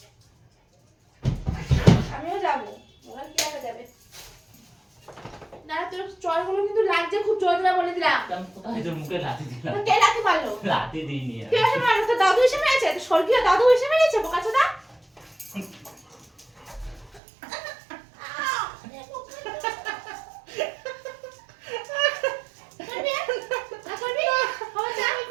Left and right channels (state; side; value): drops out; left; at 17.2 s